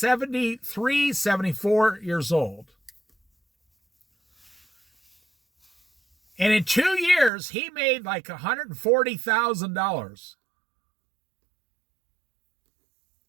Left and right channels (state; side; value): drops out; left; at 7.3 s